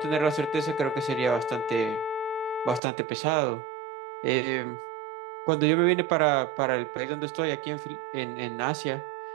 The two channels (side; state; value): left; drops out; at 2.8 s